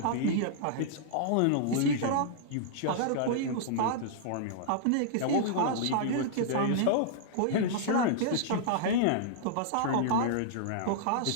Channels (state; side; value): different; both; correlation -0.02